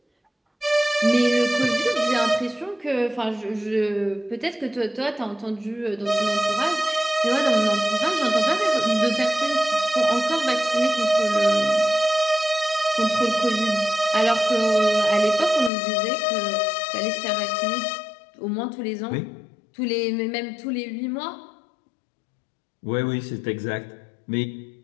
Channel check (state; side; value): drops out; right; at 15.7 s